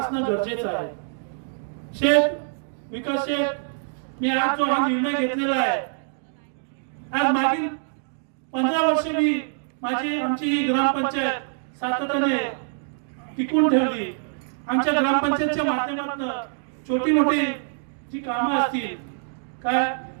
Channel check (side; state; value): left; silent; digital silence